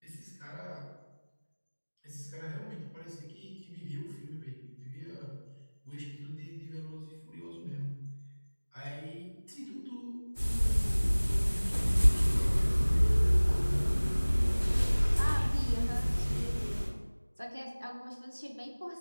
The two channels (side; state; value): both; inverted; correlation -1.00